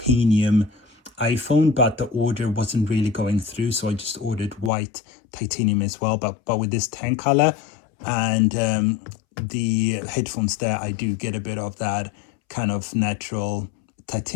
iPhone, but the order wasn't really going through, so I just ordered white titanium as well. But with this tan color and the headphones there, I do get a bit of that kind of natural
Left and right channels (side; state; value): right; drops out; at 4.7 s